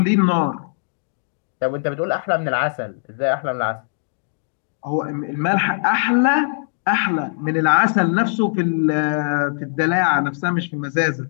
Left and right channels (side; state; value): right; silent; digital silence